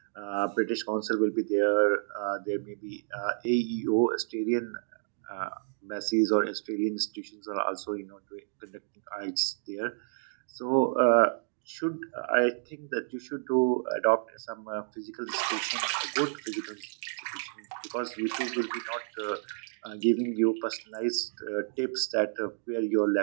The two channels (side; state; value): left; silent; digital silence